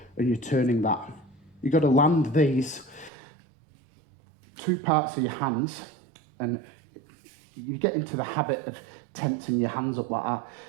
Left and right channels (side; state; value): left; drops out; at 3.1 s